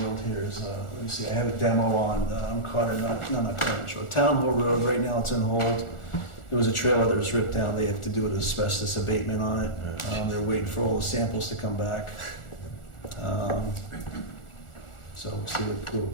world here is, let me see, I have a demo on Carter, not Carter Road, Town Hall Road. Right now it's on hold. There was a trailer that was ripped down. They have to do an asbestos abatement on it. They're waiting for all the samples to come back. So we'll see what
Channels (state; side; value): late; right; 1.4 ms